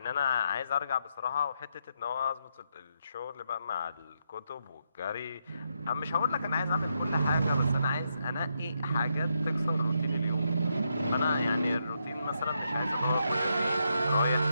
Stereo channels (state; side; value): inverted; both; correlation -0.80